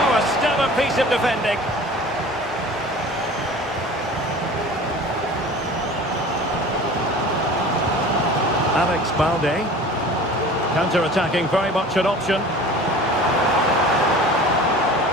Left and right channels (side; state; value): both; normal; correlation 0.41